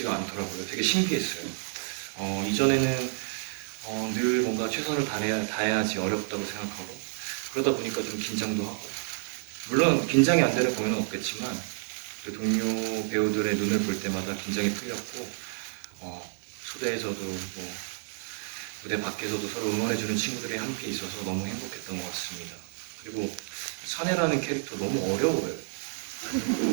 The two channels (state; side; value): silent; left; digital silence